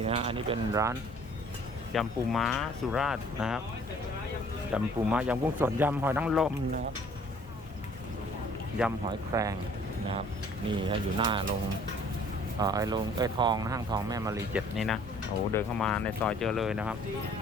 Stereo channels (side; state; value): both; normal; correlation 0.55